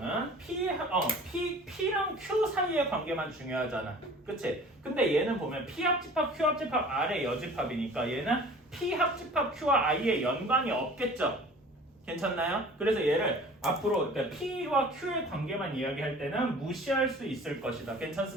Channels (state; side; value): normal; both; correlation 0.45